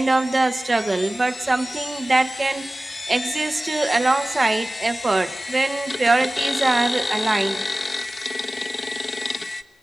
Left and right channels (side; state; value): both; normal; correlation 0.97